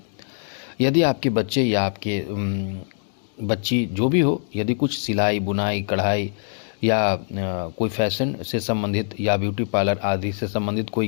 यदि आपके बच्चे या आपके बच्ची जो भी हो, यदि कुछ सिलाई, बुनाई, कढ़ाई या कोई फैशन से संबंधित या ब्यूटी पार्लर आदि से संबंधित कोई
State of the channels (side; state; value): right; silent; digital silence